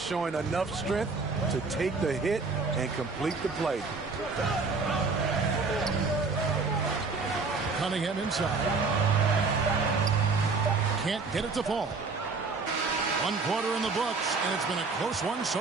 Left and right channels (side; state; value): left; quieter; 4.3 dB